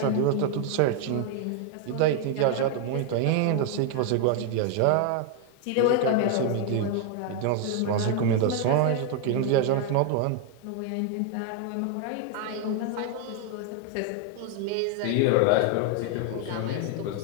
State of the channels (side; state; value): both; different; correlation 0.00